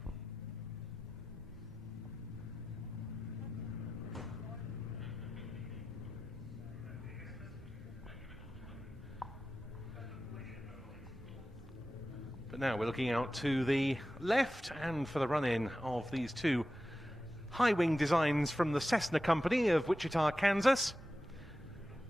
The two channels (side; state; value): both; normal; correlation 0.93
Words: But now we're looking out to the left and for the run-in of these two high-wing designs from the Cessna company of Wichita, Kansas.